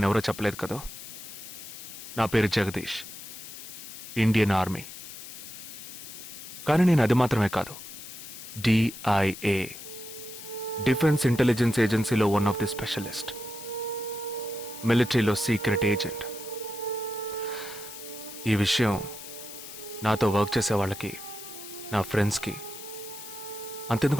చెప్పలేదు కదా. నా పేరు జగదీష్, ఇండియన్ ఆర్మీ. కానీ నేను అది మాత్రమే కాదు, DIA, డిఫెన్స్ ఇంటెలిజెన్స్ ఏజెన్సీలో వన్ ఆఫ్ ది స్పెషలిస్ట్, మిలిటరీలో సీక్రెట్ ఏజెంట్. ఈ విషయం నాతో వర్క్ చేసే వాళ్ళకి, నా ఫ్రెండ్స్కి,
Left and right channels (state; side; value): noise; left; hiss, 12 dB below the sound